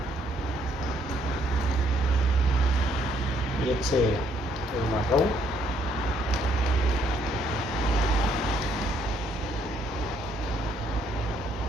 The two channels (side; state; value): both; normal; correlation 0.68